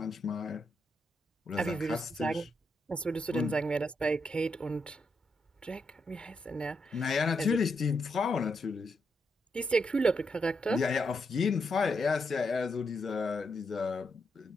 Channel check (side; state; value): both; normal; correlation 0.81